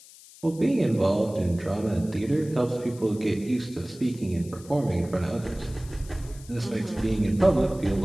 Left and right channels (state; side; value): noise; left; hiss, 21 dB below the sound